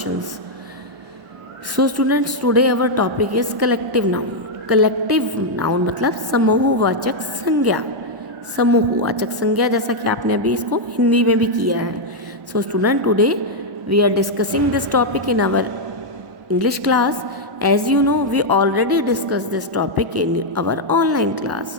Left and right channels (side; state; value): left; late; 1.1 ms